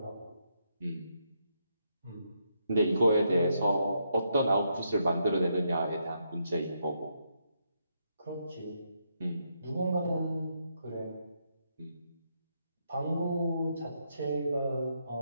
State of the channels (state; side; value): inverted; both; correlation -0.78